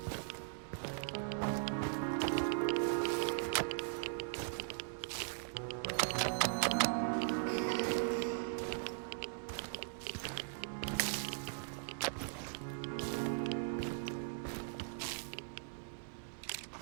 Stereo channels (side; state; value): left; silent; digital silence